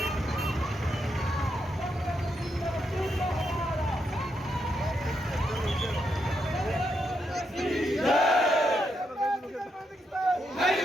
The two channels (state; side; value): normal; both; correlation 0.81